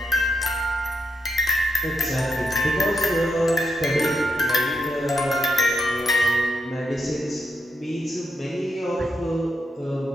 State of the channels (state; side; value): normal; both; correlation 0.82